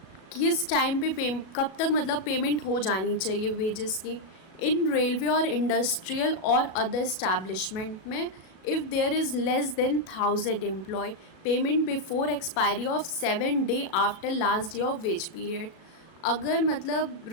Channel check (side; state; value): right; late; 37 ms